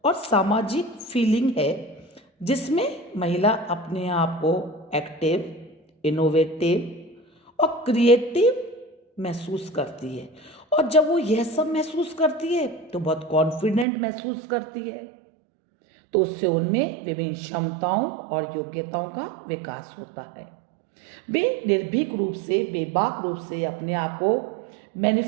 और सामाजिक फीलिंग है जिसमें महिला अपने आप को एक्टिव, इनोवेटिव और क्रिएटिव महसूस करती है। और जब वो यह सब महसूस करती है तो बहुत कॉन्फिडेंट महसूस करती है, तो उससे उनमें विभिन्न क्षमताओं और योग्यताओं का विकास होता है। वे निर्भीक रूप से, बेबाक रूप से अपने आप को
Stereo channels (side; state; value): left; drops out; at 13.9 s